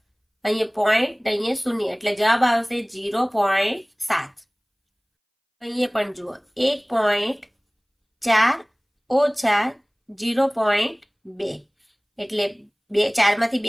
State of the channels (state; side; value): identical; both; correlation 1.00